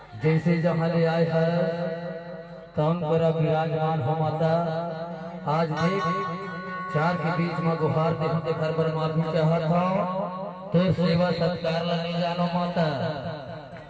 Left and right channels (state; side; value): identical; both; correlation 1.00